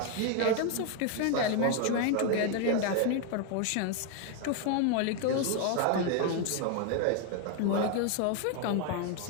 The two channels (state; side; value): different; both; correlation 0.01